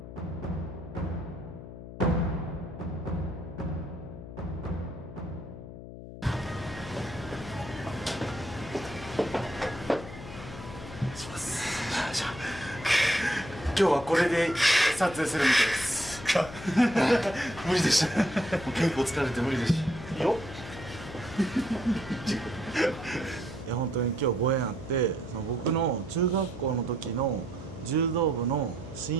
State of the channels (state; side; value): noise; left; hum, 13 dB below the sound